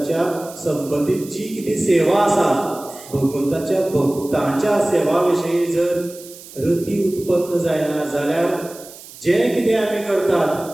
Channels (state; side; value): noise; right; hiss, 18 dB below the sound